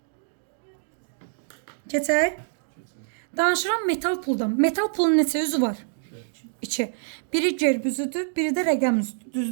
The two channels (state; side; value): silent; left; digital silence